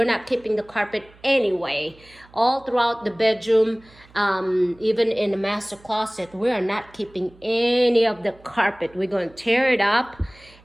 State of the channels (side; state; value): right; noise; hum, 26 dB below the sound